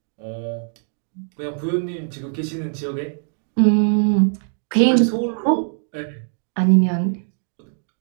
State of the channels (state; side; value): silent; left; digital silence